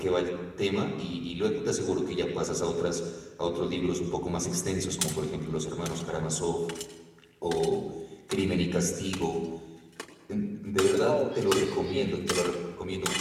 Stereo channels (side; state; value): both; identical; correlation 1.00